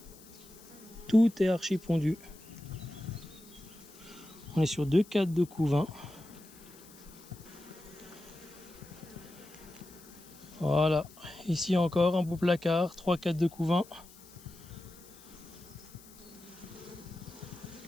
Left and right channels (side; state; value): left; noise; hiss, 22 dB below the sound